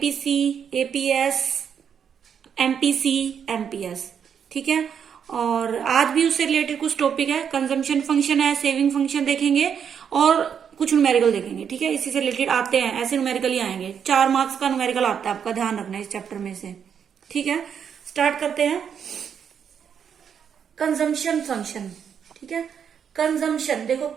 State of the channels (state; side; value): quieter; left; 7.7 dB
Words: एपीएस, एमपीसी, एमपीएस। ठीक है। और आज भी उससे रिलेटेड कुछ टॉपिक है, कंजम्पशन फंक्शन है, सेविंग फंक्शन देखेंगे और कुछ न्यूमेरिकल देखेंगे। ठीक है, इसी से रिलेटेड आते हैं, ऐसे न्यूमेरिकल ही आएंगे। 4 मार्क्स का न्यूमेरिकल आता है, आपका ध्यान रखना है इस चैप्टर में से। ठीक है, स्टार्ट करते हैं। Consumption function. ठीक है, कंजम्पशन देखो,